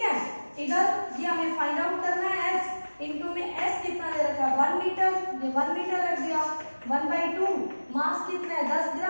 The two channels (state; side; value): inverted; both; correlation -1.00